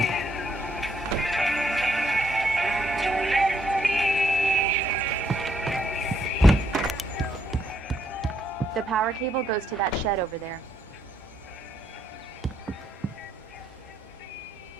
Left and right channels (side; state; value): both; normal; correlation 0.74